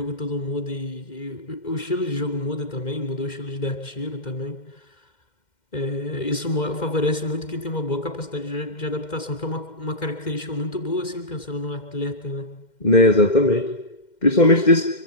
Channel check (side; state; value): right; late; 2.1 ms